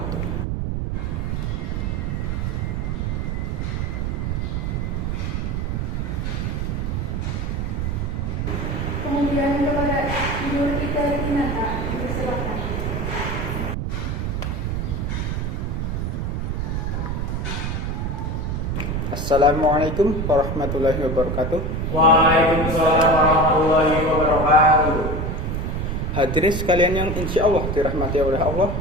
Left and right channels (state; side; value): noise; right; rumble, 1 dB below the sound